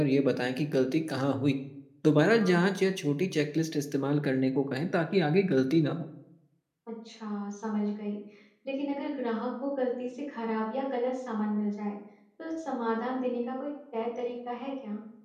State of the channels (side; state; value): both; identical; correlation 1.00